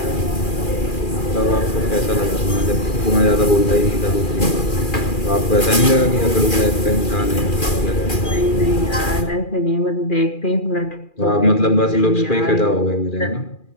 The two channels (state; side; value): late; right; 2.4 ms